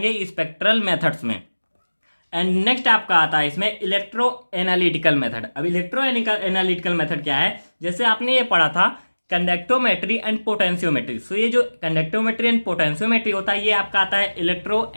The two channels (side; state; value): both; inverted; correlation -1.00